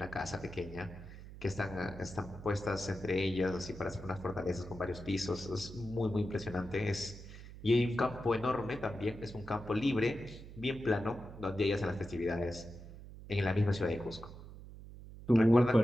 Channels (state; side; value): noise; right; hum, 14 dB below the sound